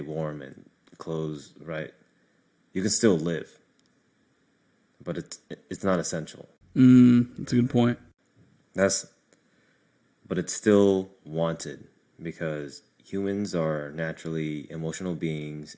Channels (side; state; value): both; identical; correlation 1.00